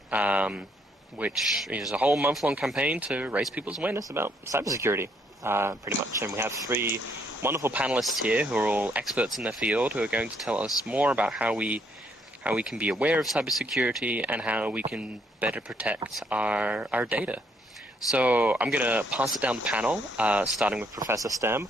which is a whole month-long campaign to raise people's awareness about cybersecurity, pretty much. And we have three wonderful panelists here who are all experts in their field who are going to tell us more about how we can be aware of cybersecurity and how we can better protect our data. So I'm going to pass it down the panel, starting with Professor Stem.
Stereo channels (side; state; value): both; normal; correlation 0.70